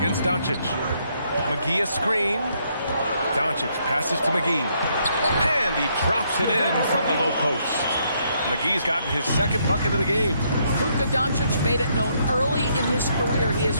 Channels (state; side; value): inverted; both; correlation -0.72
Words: Doncic. McGee a screen. Doncic passes to McGee. And he drops it in from the low post. McGee's gotten his 2nd bucket of the game. Luka Doncic made it known early in his career he is